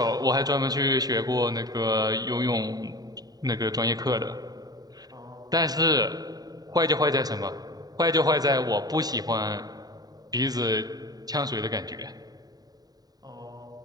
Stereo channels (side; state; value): left; late; 0.18 ms